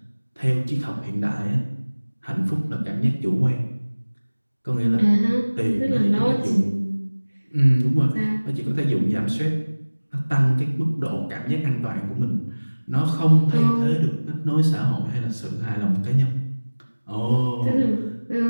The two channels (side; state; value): both; inverted; correlation -1.00